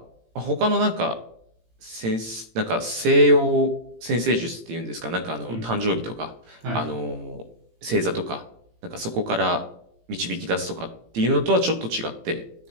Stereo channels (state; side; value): late; left; 18 ms